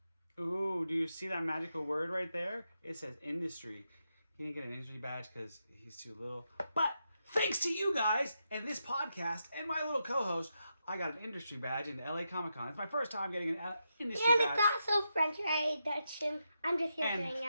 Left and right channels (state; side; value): inverted; both; correlation -0.85